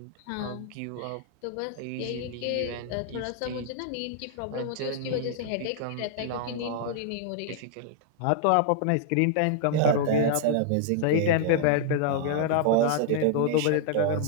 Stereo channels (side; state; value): both; different; correlation 0.00